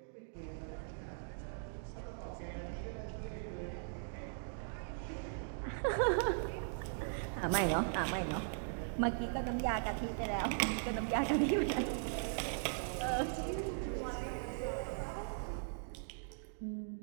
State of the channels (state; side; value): silent; left; digital silence